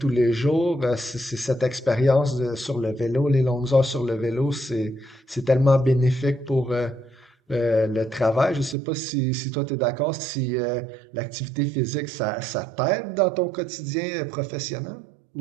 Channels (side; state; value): left; drops out; at 8.8 s